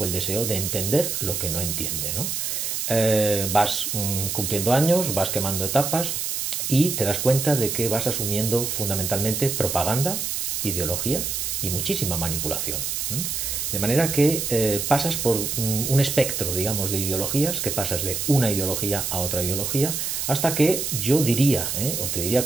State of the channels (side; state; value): right; noise; hiss, 2 dB below the sound